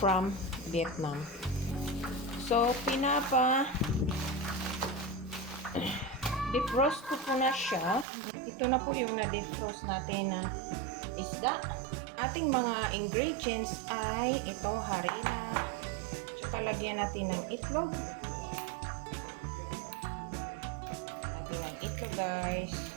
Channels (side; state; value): left; drops out; at 8.1 s